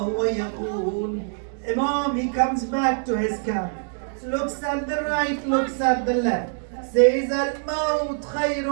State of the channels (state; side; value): silent; left; digital silence